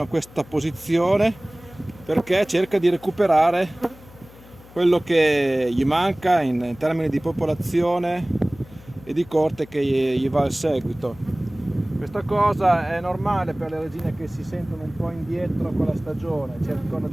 a questa posizione, perché cerca di recuperare quello che gli manca in termini di popolazione e di corte che gli va al seguito. Questa cosa è normale per le regine che si sentono un po' indietro con la stagione, cercano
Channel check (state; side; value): noise; left; hum, 22 dB below the sound